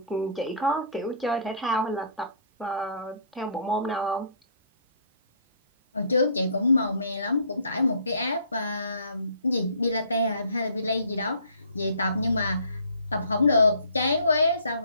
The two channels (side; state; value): both; inverted; correlation -0.55